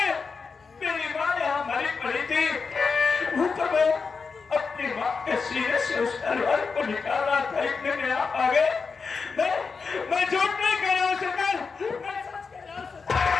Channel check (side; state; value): right; quieter; 5.0 dB